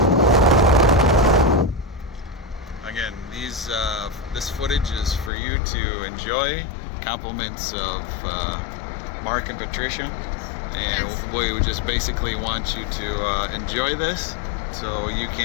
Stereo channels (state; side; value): drops out; right; at 5.3 s